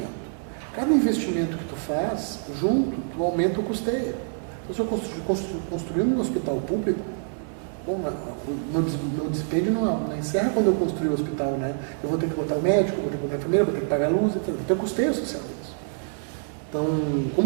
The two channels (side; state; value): left; silent; 56 dB below the other